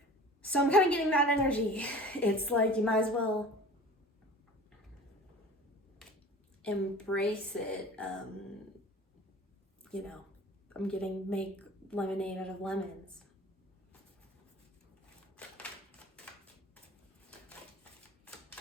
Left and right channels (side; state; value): both; normal; correlation 0.41